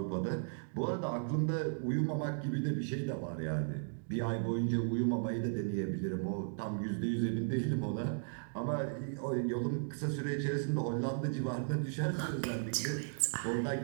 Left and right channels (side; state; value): left; silent; digital silence